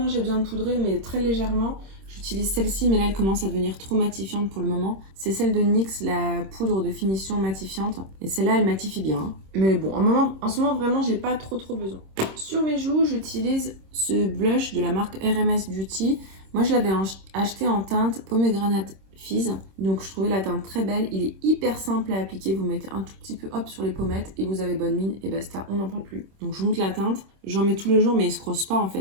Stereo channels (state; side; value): late; left; 26 ms